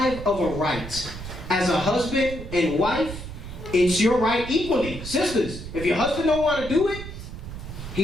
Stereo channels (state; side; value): noise; right; rumble, 10 dB below the sound